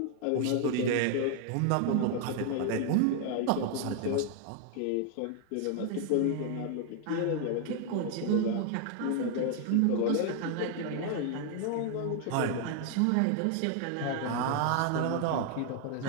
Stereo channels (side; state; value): both; different; correlation 0.00